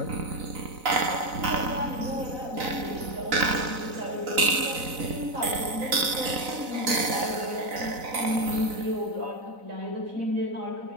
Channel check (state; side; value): late; left; 4.0 ms